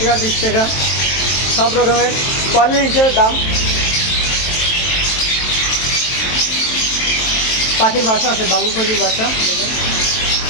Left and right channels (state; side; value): late; right; 23 ms